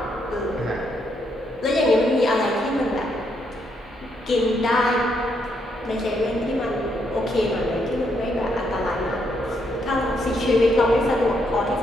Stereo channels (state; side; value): normal; both; correlation 0.76